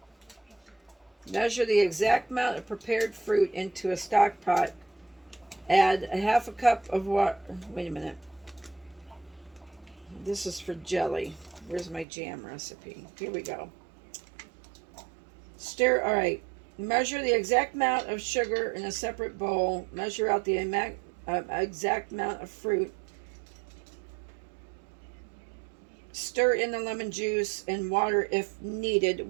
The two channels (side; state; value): left; drops out; at 12.1 s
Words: Measure the exact amount of prepared fruit into a stock pot. Add a 1/2 cup of water. Wait a minute. This is for jelly. Where's my jam recipe? Here we go. Stir. All right. Measure the exact amount of sugar in a separate bowl. Measure out the exact amount of fruit. Stir in the lemon juice and water if